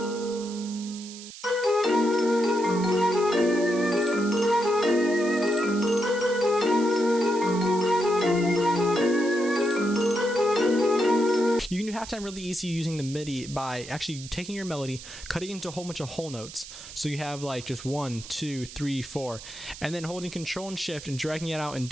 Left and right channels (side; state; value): right; noise; hiss, 14 dB below the sound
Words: You can do halftime really easy using the MIDI by actually taking your melody, cutting it into a whole bunch of whole notes. So you have like just 1, 2, 3, 4, and then holding Control and Shift and dragging it out in